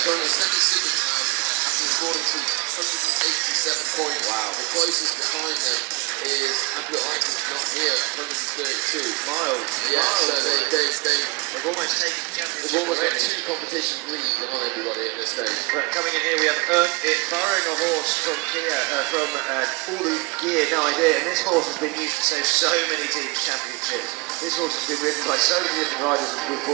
Sandringham now, after scoring to 187 points. Wow. The closest behind them is HBUK not here, 132 miles. Yeah, miles, so they've almost taken the championship. They've almost got two competitions lead on everybody at this stage. But coming in here, we have Earned It, borrowing a horse from Kia, from All the Gear, no idea. And this horse has been used to save so many teams' championships. This horse has been ridden by so many different riders with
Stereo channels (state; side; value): quieter; left; 27.6 dB